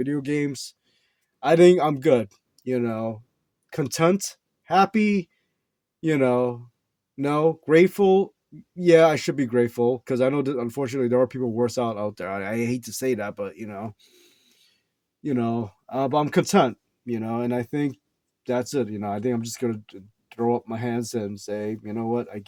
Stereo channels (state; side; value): identical; both; correlation 1.00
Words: games. I think I'm good, you know, content, happy, you know, no, grateful. Yeah, I should be grateful because I know that unfortunately there are people worse out there. I hate to say that, but but I'm content, and I think that's it. I think I'm just gonna throw up my hands and say, you know what, I